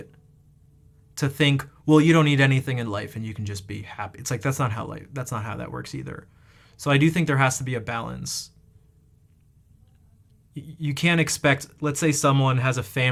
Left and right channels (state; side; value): identical; both; correlation 1.00